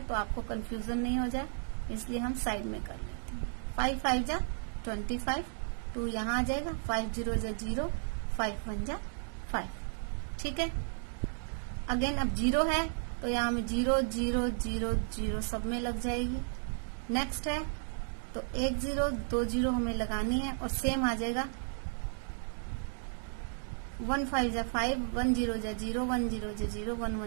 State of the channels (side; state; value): left; silent; digital silence